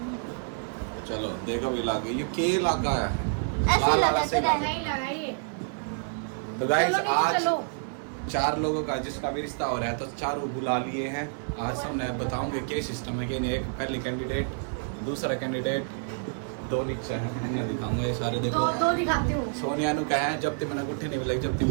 चलो देखो भी लागे, ये के इलाका है, लाल वाला से इलाका। तो गाइस आज 4 लोगों का जिसका भी रिश्ता हो रहा है तो 4 बुला लिए हैं। आज सब मैं बताऊंगे क्या सिस्टम है कि नहीं। एक पहले कैंडिडेट, दूसरा कैंडिडेट, 2 नीचे हैं, इन्हें दिखाऊंगा। ये सारे देखो, दो दिखाती हूँ। सोनिया नु कहा है जब तक मैंने गुट्ठी नहीं मिलाई, जब तक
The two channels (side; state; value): left; silent; 59 dB below the other